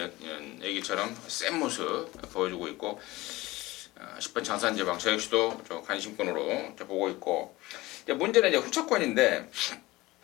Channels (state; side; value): quieter; right; 19.6 dB